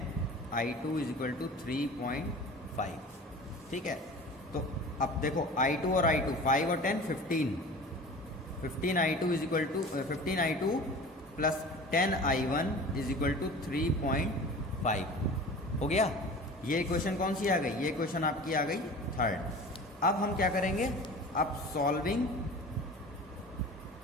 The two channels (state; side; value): normal; both; correlation 0.38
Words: is equal to 3.5। ठीक है, तो अब देखो i2 और i2, 5 और 10 15i2 is equal to 15i2 plus 10i1 is equal to 3.5 हो गया। ये इक्वेशन कौन सी आ गई, ये इक्वेशन आपकी आ गई थर्ड। अब हम क्या करेंगे, अब